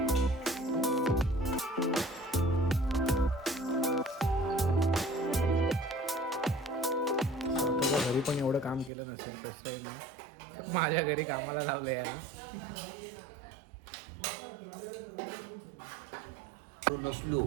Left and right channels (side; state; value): left; drops out; at 8.9 s